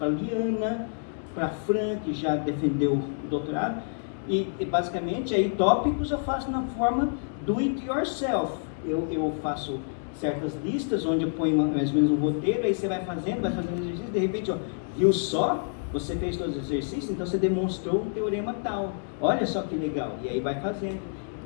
a Liana, para a Fran, que já defendeu o doutorado, e basicamente aí tópicos eu faço na forma do it yourself. Eu faço certas listas onde eu ponho mais ou menos um roteiro, aí você vai fazendo exercício, de repente, ó, viu só? Você fez todos os exercícios, então você demonstrou um teorema tal. Olha só que legal. E aí vai fazendo.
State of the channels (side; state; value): right; silent; digital silence